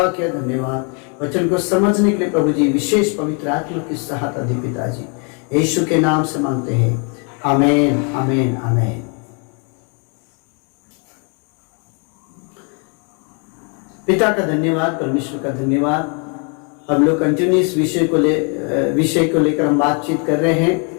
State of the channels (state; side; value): quieter; right; 37.5 dB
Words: किया, धन्यवाद। वचन को समझने के लिए प्रभु जी विशेष पवित्र आत्मा की सहायता दी पिताजी। यीशु के नाम से मांगते हैं, आमीन, आमीन, आमीन। पिता का धन्यवाद, परमेश्वर का धन्यवाद। हम लोग कंटिन्यूस विषय को लेकर हम बातचीत कर रहे हैं।